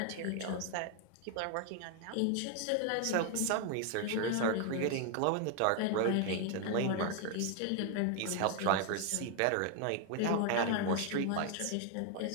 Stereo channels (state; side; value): different; both; correlation 0.01